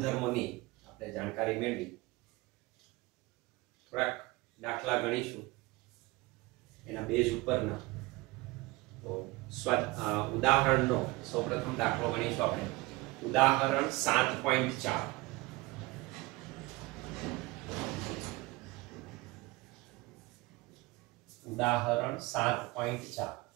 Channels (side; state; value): left; quieter; 21.9 dB